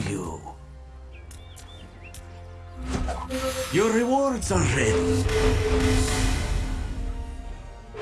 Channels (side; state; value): both; identical; correlation 1.00